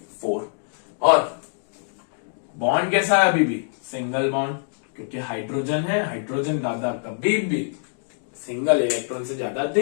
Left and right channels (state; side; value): silent; right; digital silence